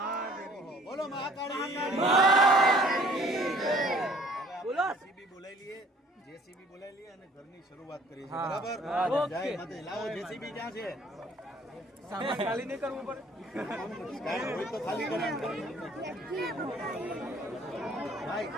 બોલો મહાકાળી. જેસીબી બોલાવી લઈએ, જેસીબી બોલાવી લઈએ અને ઘરની શરૂઆત કરીએ છીએ. બરાબર? જય માતાજી. લાવો જેસીબી ક્યાં છે? સામાન ખાલી નહીં કરવું પડે. કાંઈ હોય તો ખાલી કરવાનું. ભાઈ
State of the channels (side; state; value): both; normal; correlation 0.55